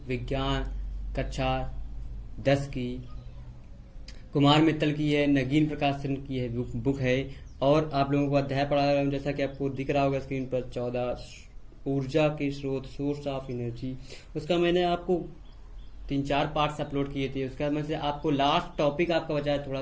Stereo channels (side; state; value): both; identical; correlation 1.00